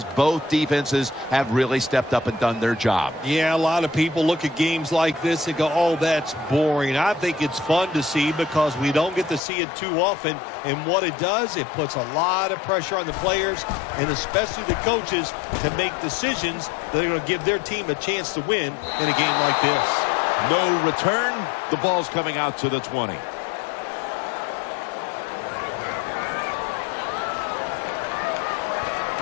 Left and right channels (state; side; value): drops out; right; at 9.4 s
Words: both defenses have really stepped up and done their job. Yeah, a lot of people look at games like this and go, oh, that's boring. I think it's fun to see because we don't get to see it too often. And what it does, it puts a lot of pressure on the players and especially the coaches to make decisions that are going to give their team a chance to win in a game like this. No return. The ball's coming out to the 20.